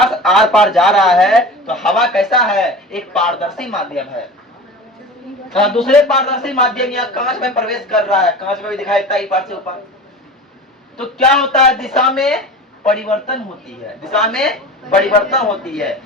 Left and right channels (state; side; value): normal; both; correlation 0.34